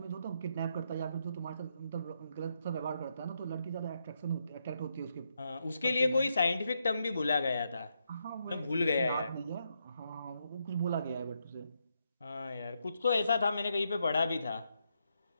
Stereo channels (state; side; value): inverted; both; correlation -0.80